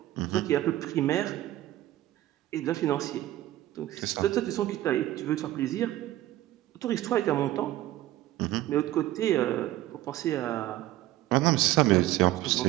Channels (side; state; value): left; quieter; 15.0 dB